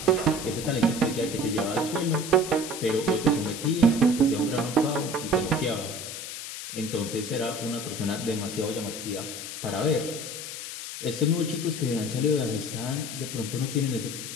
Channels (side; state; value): left; noise; hiss, 8 dB below the sound